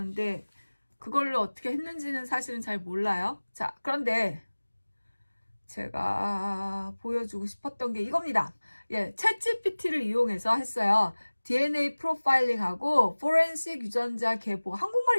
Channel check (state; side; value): inverted; both; correlation -1.00